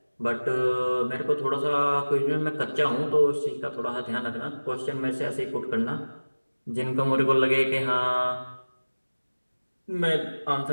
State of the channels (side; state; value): both; inverted; correlation -1.00